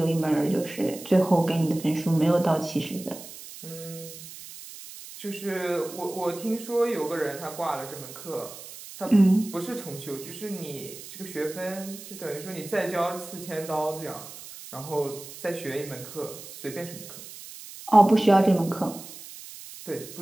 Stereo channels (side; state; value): right; noise; hiss, 14 dB below the sound